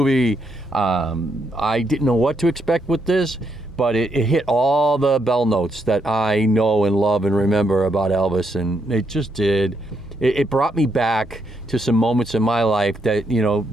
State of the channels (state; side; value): normal; both; correlation 0.78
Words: I didn't know what to expect with this, but it hit all the bell notes that I know and love and remember about Elvis, and it just did. It brought me back to some moments in my life that,